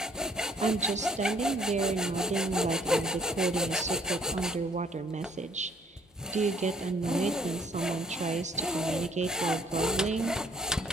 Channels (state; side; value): normal; both; correlation 0.62